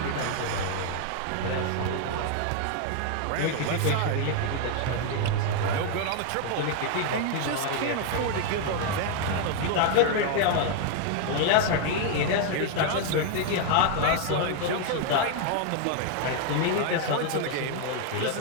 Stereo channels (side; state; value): both; different; correlation 0.00